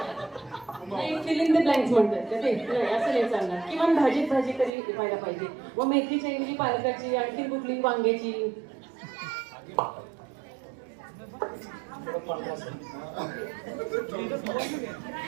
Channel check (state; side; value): drops out; left; at 4.7 s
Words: फिल इन द ब्लँक्स म्हणतात ते. असं नाही चालणार. किमान भाजीत भाजी तरी व्हायला पाहिजे. व मेथीच्या ऐवजी पालकाची, आणखी कुठली वांग्याची.